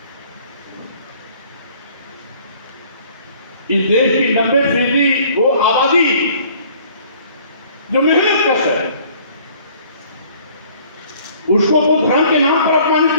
इस देश की 90% वो आबादी जो मेहनत कश है, उसको वो धर्म के नाम पर अपमानित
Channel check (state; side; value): inverted; both; correlation -0.56